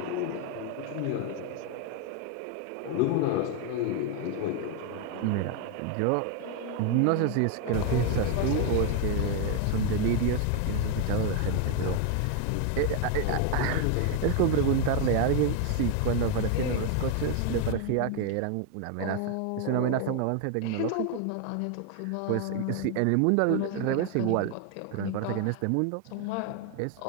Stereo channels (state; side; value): different; both; correlation 0.01